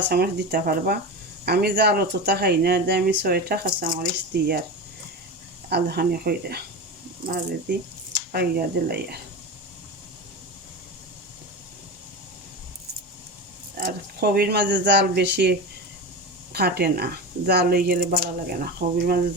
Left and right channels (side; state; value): both; normal; correlation 0.25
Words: দিতে পারবা। আমি জাল অতটা খাই না, আমি 6টা কাঁচামরিচ দিই আর আধাখানি কইরা মাঝে দি পাইয়া দিলাই। আর কবির মাঝে জাল বেশি কাটে না, জাল হয়ে গেলে ভালো লাগে না, কবির মাঝে